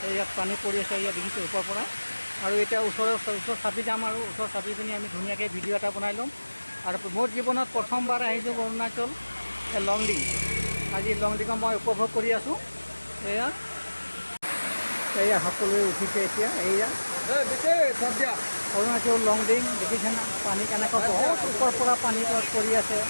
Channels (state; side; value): inverted; both; correlation -1.00